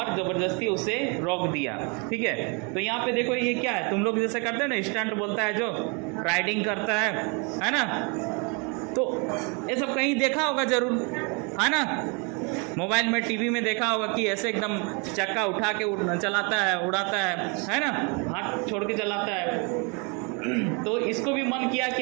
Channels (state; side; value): quieter; left; 33.0 dB